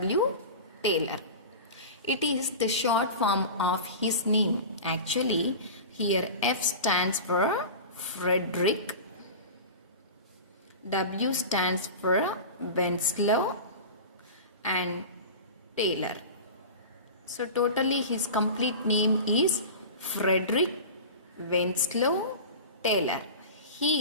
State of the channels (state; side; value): inverted; both; correlation -0.31